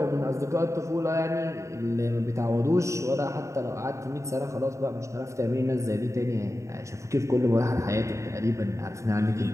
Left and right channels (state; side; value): late; left; 0.14 ms